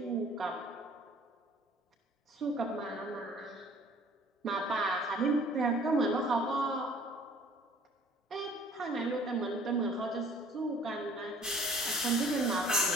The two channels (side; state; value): both; normal; correlation 0.53